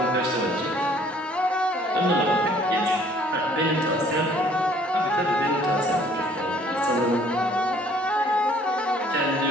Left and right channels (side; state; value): both; normal; correlation 0.58